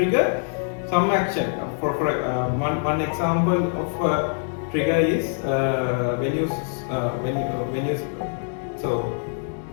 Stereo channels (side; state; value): right; silent; digital silence